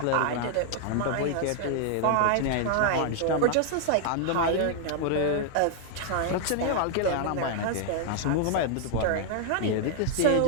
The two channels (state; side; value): different; both; correlation 0.00